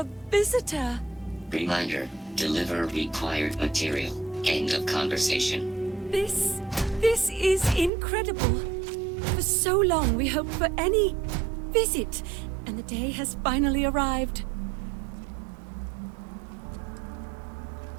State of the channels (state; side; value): drops out; left; at 7.9 s